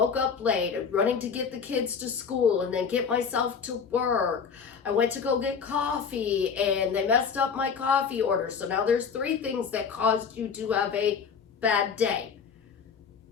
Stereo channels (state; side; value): quieter; right; 6.3 dB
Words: up late, running to get the kids to school and then get myself to work. I went to go get coffee and they messed up my coffee order. So now there's 3 things that caused you to have a bad day.